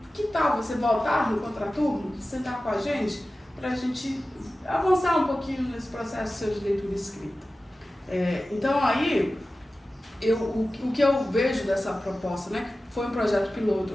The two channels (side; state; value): both; normal; correlation 0.95